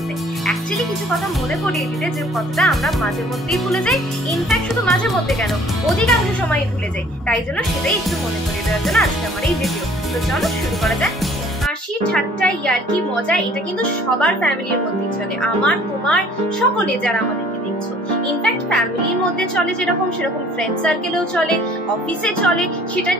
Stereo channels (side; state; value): both; normal; correlation 0.55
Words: অ্যাকচুয়ালি কিছু কথা মনে করিয়ে দিতে, যে কথাটা আমরা মাঝে মধ্যেই ভুলে যাই। ইনফ্যাক্ট শুধু মাঝে মধ্যে কেন, অধিকাংশ সময় ভুলে যাই। তাই জন্য সেটাই একটু মনে করিয়ে দেওয়ার জন্য আজকে আমার এই ভিডিও। তো চলো শুরু করা যাক। হাসি ঠাট্টা ইয়ার্কি মজা এটা কিন্তু সবার ফ্যামিলির মধ্যেই চলে, আমার তোমার সকলে যারা আমাদেরকে দেখছো। ইনফ্যাক্ট ফ্যামিলির মধ্যে চলে যেরকম, সেরকম ফ্রেন্ড সার্কেলেও চলে, অফিসে চলে। সেটা